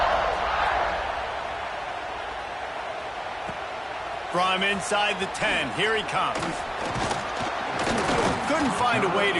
From inside the 10, here he comes. Couldn't find a way to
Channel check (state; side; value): identical; both; correlation 1.00